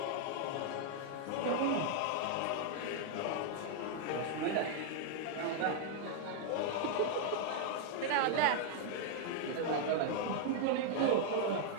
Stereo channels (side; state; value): both; different; correlation 0.00